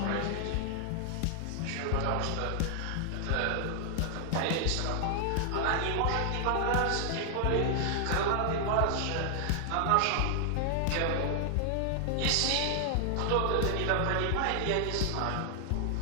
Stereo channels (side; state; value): both; different; correlation 0.00